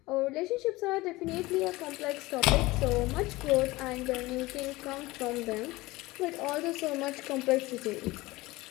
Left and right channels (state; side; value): quieter; right; 20.3 dB